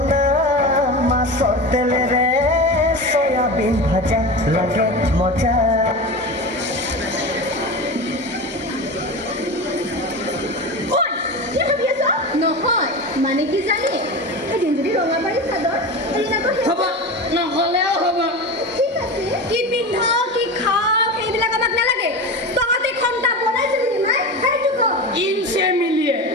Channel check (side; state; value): both; normal; correlation 0.26